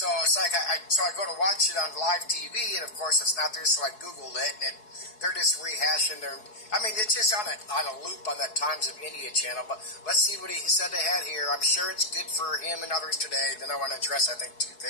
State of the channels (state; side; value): late; right; 4.7 ms